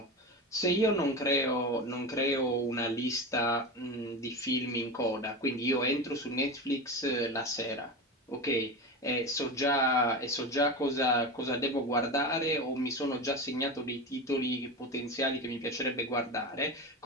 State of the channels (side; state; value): both; normal; correlation 0.23